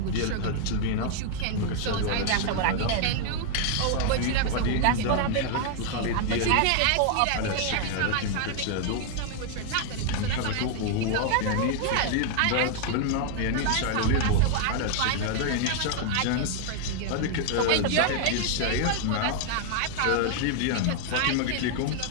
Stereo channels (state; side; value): different; both; correlation 0.00